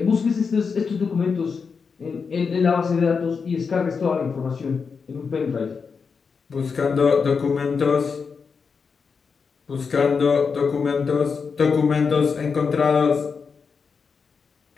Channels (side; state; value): right; quieter; 5.5 dB